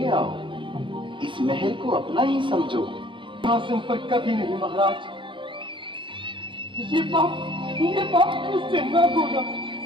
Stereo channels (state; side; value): late; left; 0.24 ms